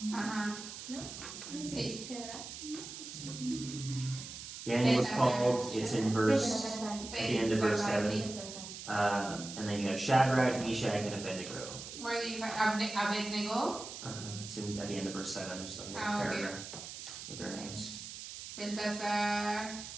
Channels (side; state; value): right; noise; hiss, 10 dB below the sound